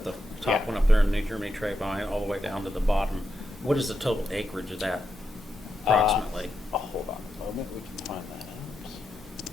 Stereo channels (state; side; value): normal; both; correlation 0.85